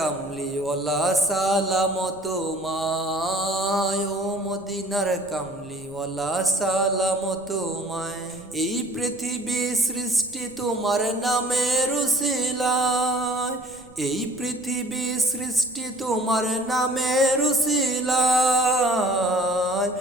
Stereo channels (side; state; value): right; noise; rumble, 25 dB below the sound